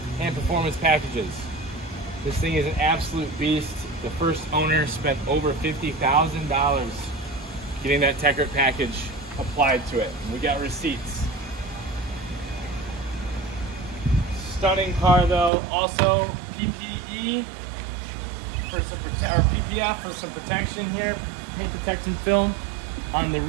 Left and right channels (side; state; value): left; drops out; at 15.5 s